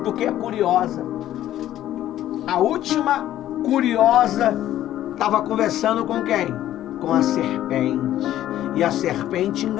Porque é curiosa. A última curiosa estava conversando com quem? Com a serpente. E a serpente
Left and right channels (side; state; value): right; quieter; 12.8 dB